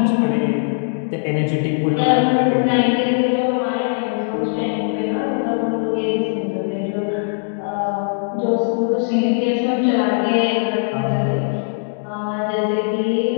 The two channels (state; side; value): silent; right; 66 dB below the other